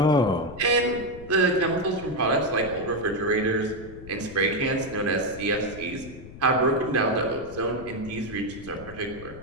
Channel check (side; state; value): left; noise; rumble, 16 dB below the sound